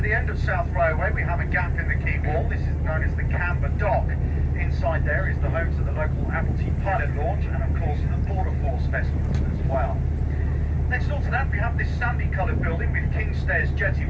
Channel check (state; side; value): identical; both; correlation 1.00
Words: the end of South Railway, we have a gap in the quay wall. This is known as the Camber Dock. Inside there is the home to the local Admiralty pilot launch, and of course the Border Force vessels as well. Next door to that, we have this sandy coloured building with King's Stairs Jetty